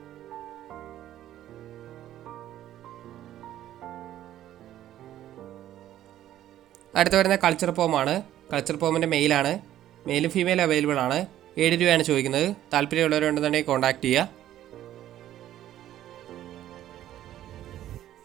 അടുത്ത് വരുന്ന കൾച്ചർ പോമാണ്. കൾച്ചർ പോമിൻ്റെ മെയിലാണ്. മെയിലും ഫീമെയിലും അവൈലബിൾ ആണ്. 7 രൂപയാണ് ചോദിക്കുന്നത്. താല്പര്യമുള്ളവരുണ്ടെന്നുണ്ടെങ്കിൽ കോൺടാക്ട് ചെയ്യുക.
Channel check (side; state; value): left; quieter; 12.5 dB